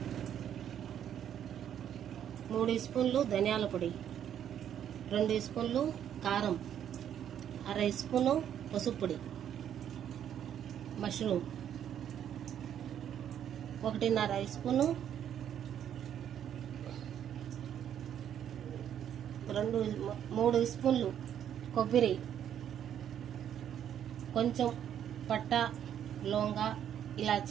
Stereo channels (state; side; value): quieter; left; 9.7 dB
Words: మూడు స్పూన్లు ధనియాల పొడి, 2 స్పూన్లు కారం, అర స్పూను పసుపు పొడి, మష్రూమ్ 1.5 స్పూను, 3 స్పూన్లు కొబ్బరి, కొంచెం పట్ట, లవంగ,